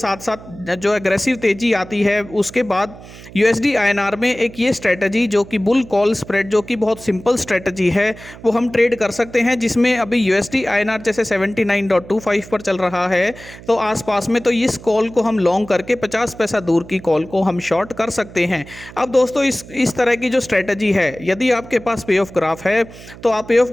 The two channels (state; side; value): noise; right; hum, 18 dB below the sound